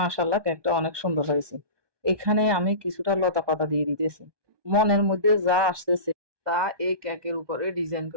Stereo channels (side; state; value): left; late; 1.2 ms